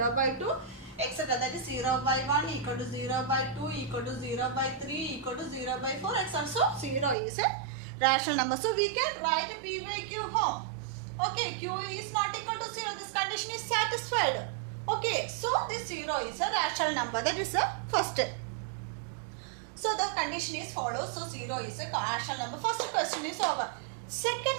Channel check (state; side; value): drops out; left; at 7.2 s